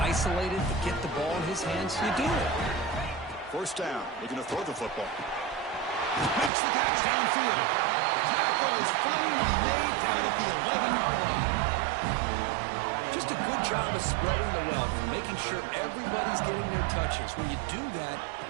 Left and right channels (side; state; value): left; drops out; at 6.5 s